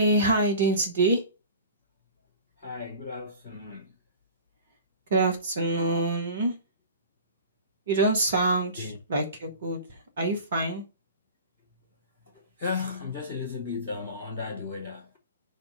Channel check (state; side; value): inverted; both; correlation -0.39